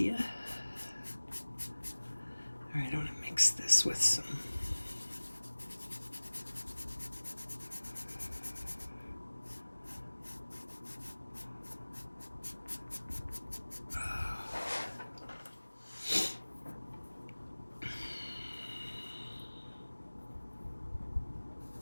All right, I want to mix this with some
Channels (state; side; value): inverted; both; correlation -1.00